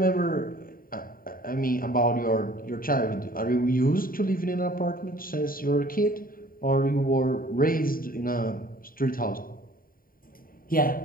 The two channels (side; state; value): right; late; 0.41 ms